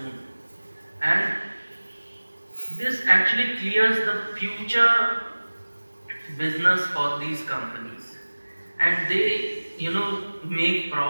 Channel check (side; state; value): both; inverted; correlation -1.00